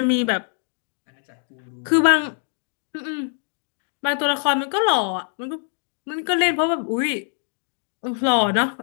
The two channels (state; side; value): silent; right; digital silence